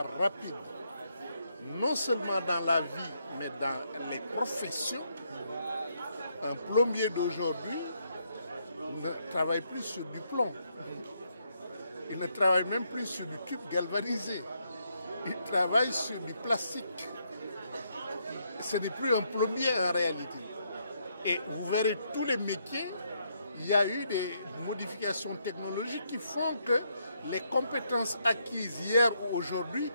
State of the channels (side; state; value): both; inverted; correlation -0.76